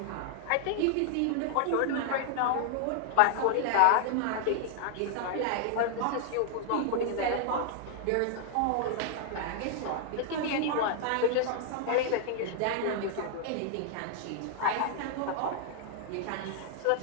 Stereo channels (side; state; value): both; different; correlation -0.01